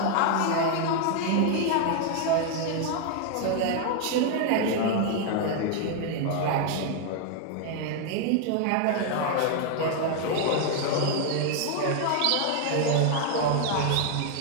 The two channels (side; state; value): both; different; correlation 0.00